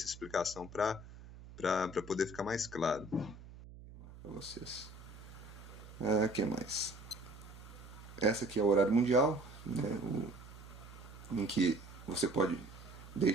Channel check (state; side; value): noise; right; hum, 16 dB below the sound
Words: explicação para poder ficar mais claro para vocês. O que mais? Essa aqui é o horário mundial, né? Em que você pode